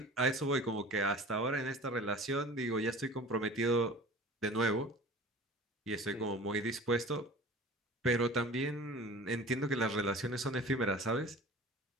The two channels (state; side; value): normal; both; correlation 0.41